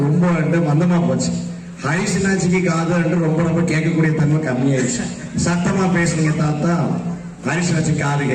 ரொம்ப மந்தமா போச்சு. ஹரிசனாச்சிக்கு காது ரொம்ப கேட்கக்கூடிய தன்மை கம்மியாயிடுச்சு. சத்தமா பேசுனீங்க தாத்தா, ஹரிசனாச்சி காது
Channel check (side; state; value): both; identical; correlation 1.00